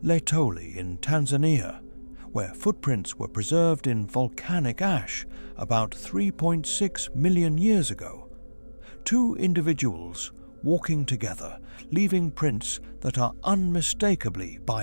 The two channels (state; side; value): inverted; both; correlation -1.00